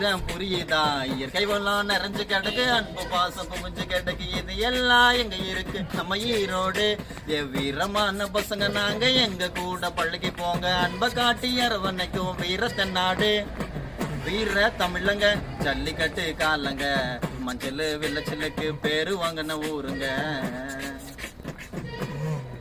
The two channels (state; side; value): identical; both; correlation 1.00